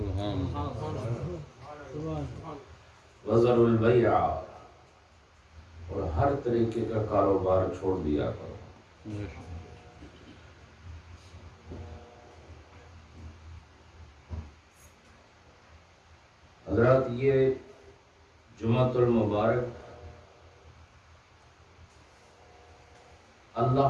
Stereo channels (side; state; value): both; identical; correlation 1.00